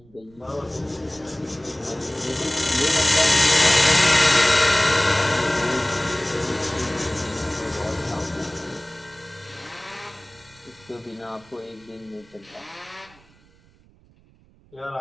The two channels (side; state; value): right; noise; rumble, 29 dB below the sound